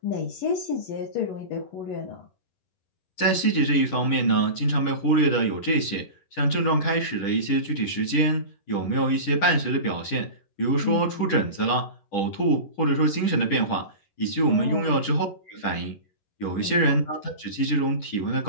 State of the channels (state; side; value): late; right; 10 ms